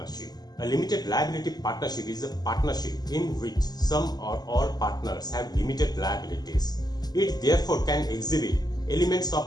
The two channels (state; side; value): late; right; 0.20 ms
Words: A limited liability partnership is a partnership in which some or all partners have limited liabilities. It therefore can exhibit elements